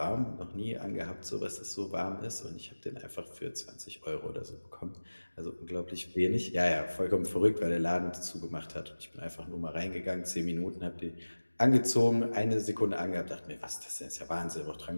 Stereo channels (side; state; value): both; inverted; correlation -1.00